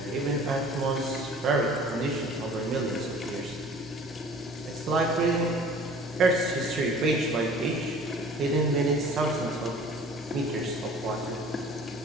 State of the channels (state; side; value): normal; both; correlation 0.48